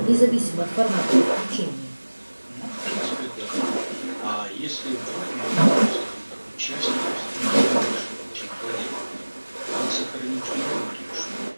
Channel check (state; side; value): inverted; both; correlation -1.00